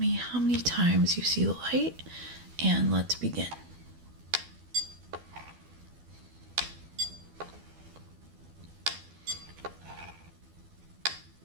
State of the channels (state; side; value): late; left; 12 ms